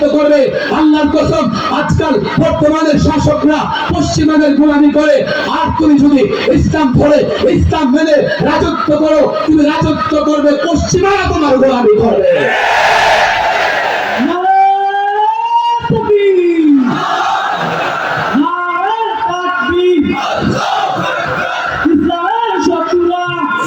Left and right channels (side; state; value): both; identical; correlation 1.00